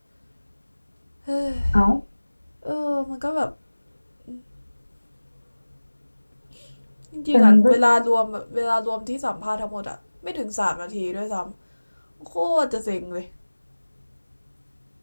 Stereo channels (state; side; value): inverted; both; correlation -1.00